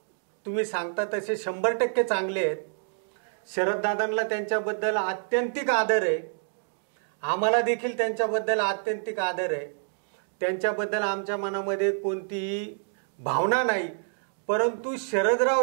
तुम्ही सांगता तसे 100% चांगले आहेत. शरददादांना त्यांच्याबद्दल आत्यंतिक आदर आहे. आम्हाला देखील त्यांच्याबद्दल आत्यंतिक आदर आहे. त्यांच्याबद्दल आमच्या मनामध्ये कोणतीही भावना नाही. परंतु शरदराव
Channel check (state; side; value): silent; left; digital silence